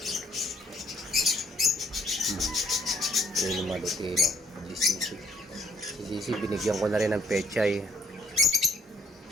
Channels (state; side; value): normal; both; correlation 0.65